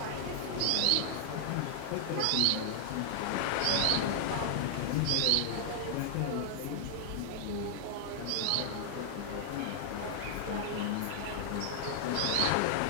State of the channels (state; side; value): different; both; correlation 0.00